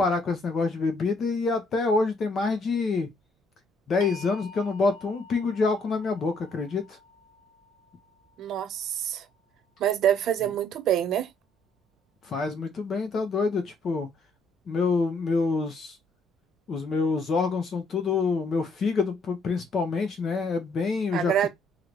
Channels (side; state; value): both; normal; correlation 0.67